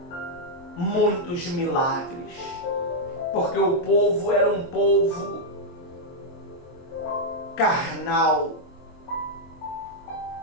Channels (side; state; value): right; late; 23 ms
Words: muitos milagres, porque o povo era um povo carnal.